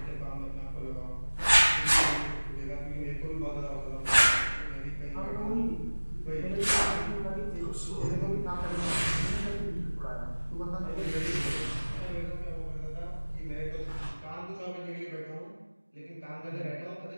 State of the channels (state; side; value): inverted; both; correlation -1.00